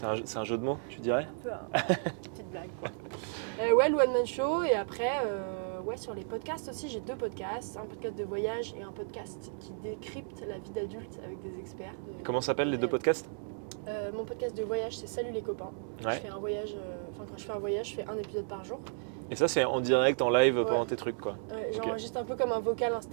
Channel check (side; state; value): left; silent; digital silence